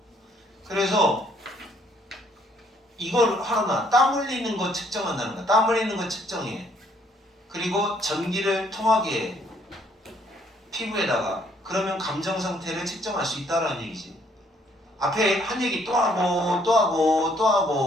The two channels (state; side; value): normal; both; correlation 0.66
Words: 그래서 이걸 하나 땀 흘리는 거 측정한다는 거야. 땀 흘리는 거 측정해. 그리고 전기를 통하게 해. 피부에다가. 그러면 감정 상태를 측정할 수 있다라는 얘기지. 앞에 한 얘기 또 하고